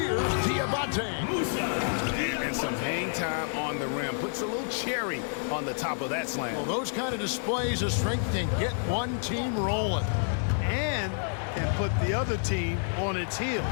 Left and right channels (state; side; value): silent; right; 58 dB below the other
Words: Diabate. And some hang time on the rim. Puts a little cherry on the top of that slam. Well, those kind of displays of strength can get one team rolling. And can put the other team on its heels.